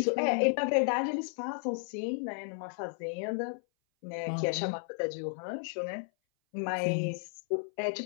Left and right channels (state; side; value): silent; right; 56 dB below the other